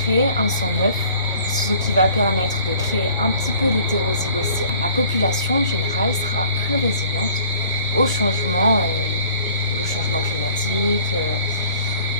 créer un sang neuf, ce qui va permettre de créer un petit peu d'hétérozygotie. La population en général sera plus résiliente au changement climatique,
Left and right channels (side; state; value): both; inverted; correlation -0.53